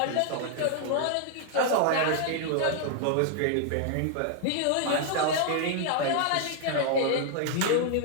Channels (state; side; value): different; both; correlation 0.00